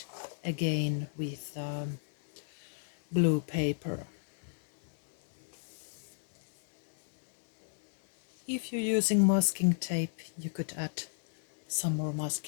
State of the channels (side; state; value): right; silent; digital silence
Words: again with blue paper. If you're using masking tape, you could add some more